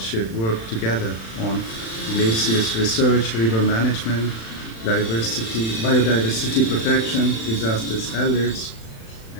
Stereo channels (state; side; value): late; right; 36 ms